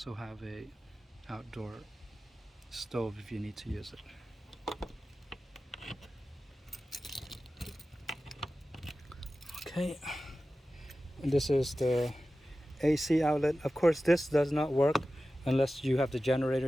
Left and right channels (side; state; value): both; normal; correlation 0.95